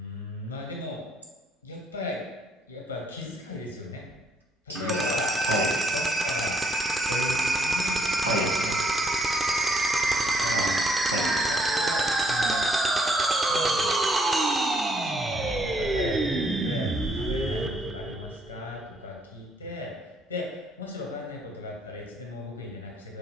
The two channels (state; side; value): normal; both; correlation 0.69